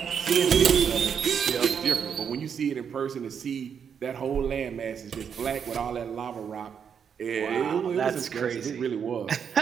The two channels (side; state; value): left; quieter; 7.3 dB